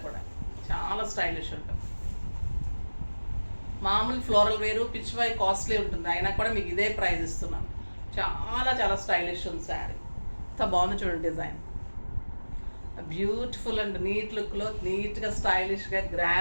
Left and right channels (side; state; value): both; inverted; correlation -1.00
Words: కూడా, చాలా స్టైలిష్ ఉంటుంది. మామూలు ఫ్లోరల్ వేరు, పిచ్వాయ్ కాస్ట్లీ ఉంటుంది, అయినా కూడా మీకు ఇదే ప్రైస్ ఇస్తున్నాను. చాలా చాలా స్టైలిష్ ఉంది శారీ. ఎంత బాగుంది చూడండి డిజైన్. బ్యూటిఫుల్ అండ్ నీట్ లుక్లో, నీట్గా స్టైలిష్గా